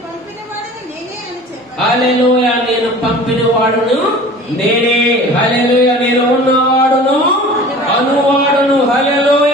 హల్లెలూయా, నేను పంపిన వాడును నేనే. హల్లెలూయా, నేను ఉన్నవాడును అనువాడును.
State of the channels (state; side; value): normal; both; correlation 0.42